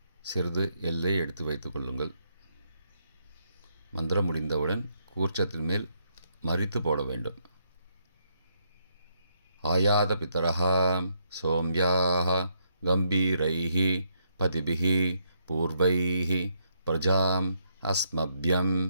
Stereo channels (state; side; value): inverted; both; correlation -0.75